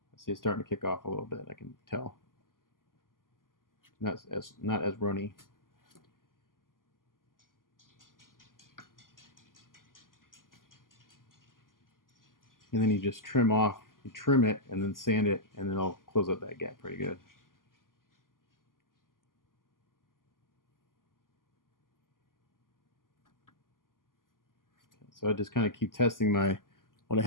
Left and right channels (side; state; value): right; late; 0.91 ms